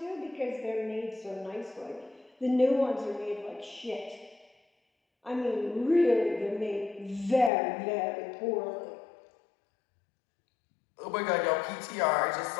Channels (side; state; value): right; drops out; at 7.5 s